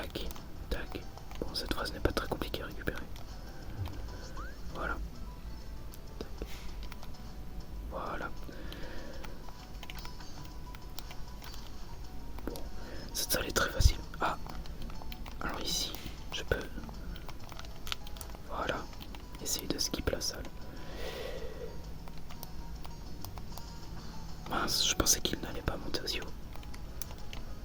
tac. Bon, cette phrase n'est pas très compliquée à récupérer. Voilà. Tac. Voilà. Bon, cette salle est très facile. Ah, alors ici, je peux... Voilà. Essayer de skip la salle. Mince, je pensais qu'il n'allait pas monter aussi haut.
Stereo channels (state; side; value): identical; both; correlation 1.00